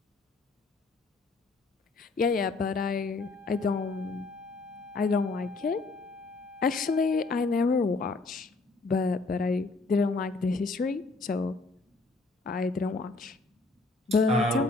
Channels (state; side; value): quieter; right; 3.6 dB